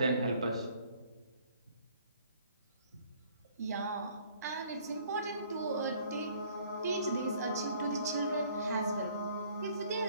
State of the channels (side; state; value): both; inverted; correlation -0.58